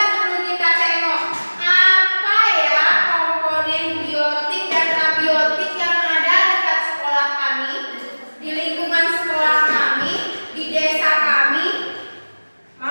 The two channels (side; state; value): both; inverted; correlation -1.00